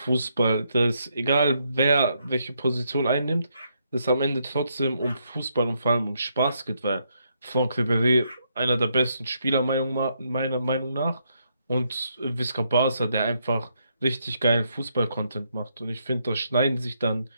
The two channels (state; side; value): inverted; both; correlation -0.76